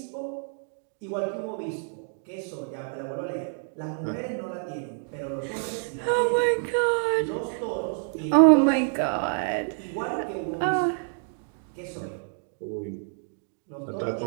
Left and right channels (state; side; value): silent; left; 59 dB below the other